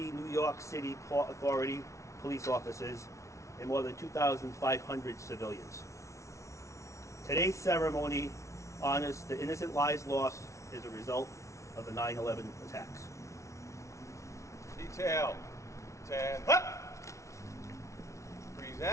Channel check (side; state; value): right; late; 0.14 ms